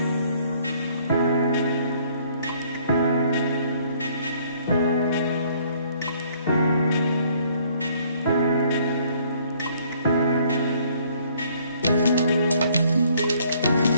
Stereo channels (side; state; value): both; inverted; correlation -0.61